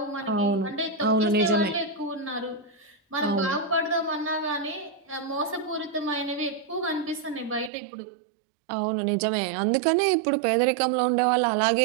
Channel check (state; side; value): drops out; left; at 7.7 s